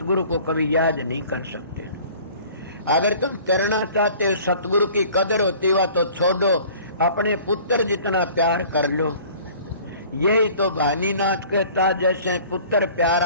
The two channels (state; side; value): inverted; both; correlation -0.48